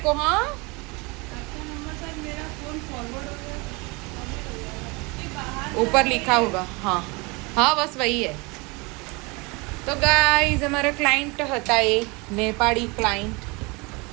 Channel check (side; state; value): left; quieter; 27.3 dB